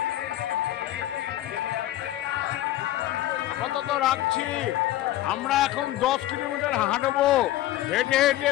আপাতত রাখছি। আমরা এখন 10 কিলোমিটার হাঁটবো, হেঁটে হেঁটে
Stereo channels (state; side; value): quieter; right; 14.4 dB